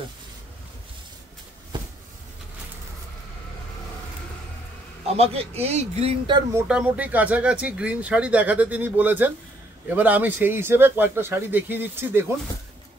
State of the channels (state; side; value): normal; both; correlation 0.69